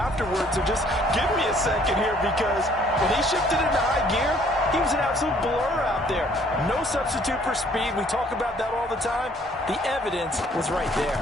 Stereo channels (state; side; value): normal; both; correlation 0.60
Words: So just give me a second here, because when he shifted into high gear, he was an absolute blur out there. No substitute for speed. We talk about that all the time. The evidence was right there.